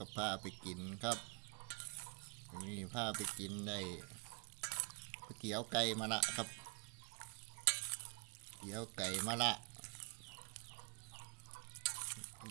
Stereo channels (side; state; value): left; quieter; 33.6 dB